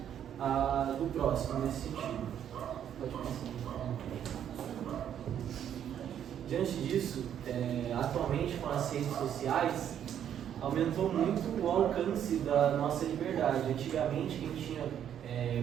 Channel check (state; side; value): quieter; left; 9.6 dB